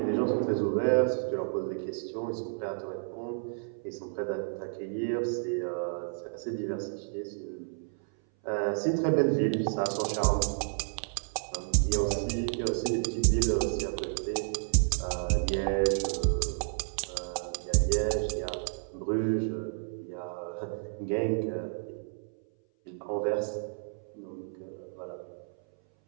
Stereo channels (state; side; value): silent; left; 57 dB below the other